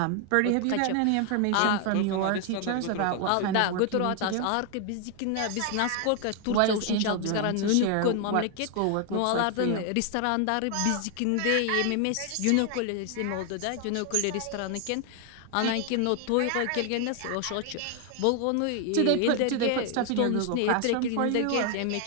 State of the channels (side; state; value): both; different; correlation 0.00